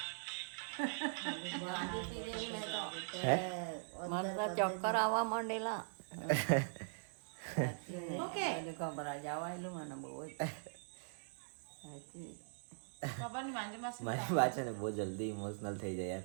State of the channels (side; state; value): left; silent; digital silence